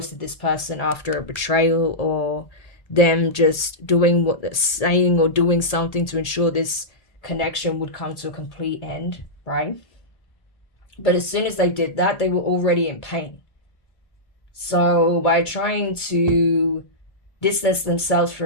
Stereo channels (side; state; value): right; late; 1.8 ms